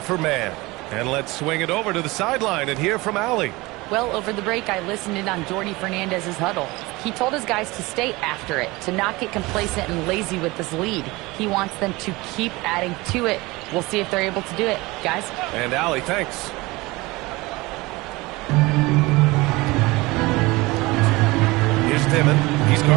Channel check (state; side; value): quieter; left; 22.1 dB